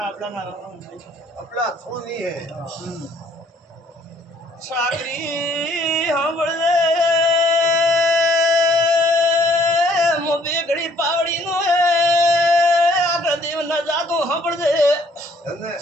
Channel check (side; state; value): both; normal; correlation 0.61